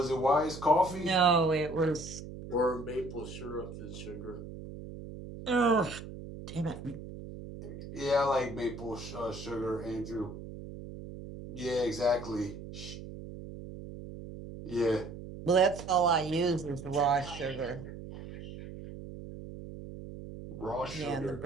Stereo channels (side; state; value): right; noise; hum, 11 dB below the sound